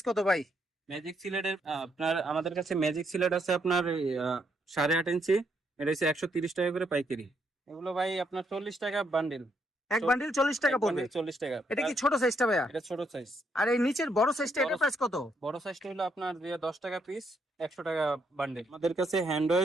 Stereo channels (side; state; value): both; normal; correlation 0.75